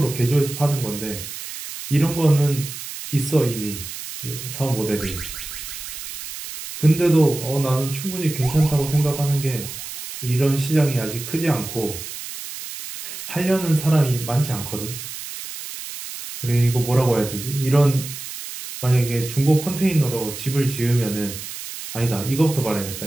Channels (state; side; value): noise; right; hiss, 10 dB below the sound